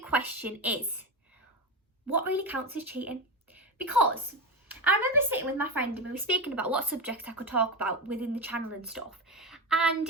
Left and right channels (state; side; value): normal; both; correlation 0.17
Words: question is, what really counts as cheating? Because I remember sitting with my friend and we were speaking about what subjects I could talk about within the channel and stuff.